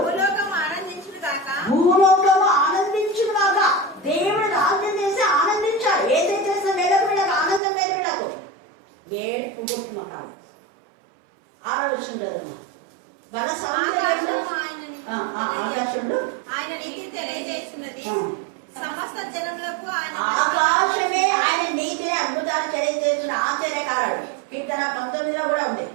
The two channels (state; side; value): drops out; left; at 7.6 s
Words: భూలోకము ఆనందించుగాక. దేవుడు రాజ్యం చేసి ఆనందించాడు. ఏదైతే చేసిన వీళ్ళకు ఆనందం లేదు, వీళ్ళకు ఏడుపు కొట్టుమకాడు. 6వ వచ్చింది కదా, బల సౌందర్యంలో ఆకాశంలో ఆయన నీతి తెలియజేస్తున్నది, సమస్త జనములకు ఆకాశమే ఆయన నీతిని అద్భుతాలు తెలియజేస్తున్న ఆశ్చర్యకారుడు. కీర్తన 19లో కూడా ఉంది.